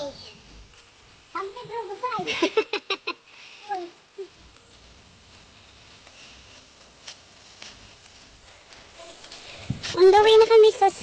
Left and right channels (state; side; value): identical; both; correlation 1.00